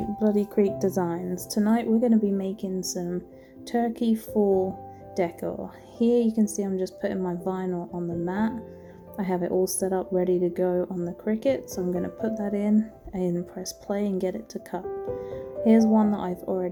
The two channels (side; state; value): both; identical; correlation 1.00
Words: Bloody Creek Designs. Tonight we're going to be making some turkey fall decor. Here you can see I'm just putting my vinyl on the mat. I have it all set up ready to go on the Cricut, so I'm going to put that in and press play and get it to cut. Here's one that I've